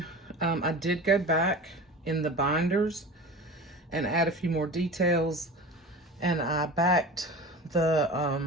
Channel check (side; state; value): both; normal; correlation 0.34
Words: I did go back in the binders and add a few more details. And I backed